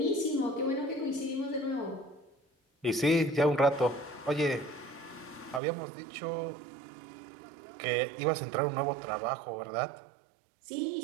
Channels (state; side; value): drops out; left; at 5.6 s